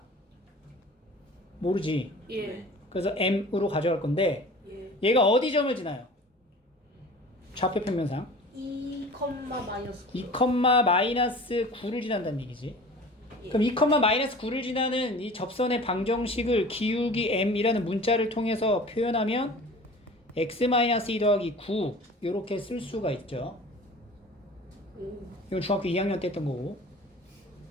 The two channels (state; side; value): normal; both; correlation 0.41